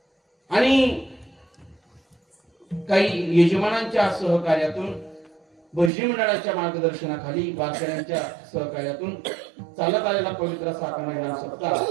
आणि काही यजमानांच्या सहकार्यातून भजनी मंडळाच्या मार्गदर्शनाखाली वारकऱ्यांच्या सहकार्यातून चालत आलेला पवित्र असा खंडनाम सप्ताह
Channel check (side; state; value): left; drops out; at 5.9 s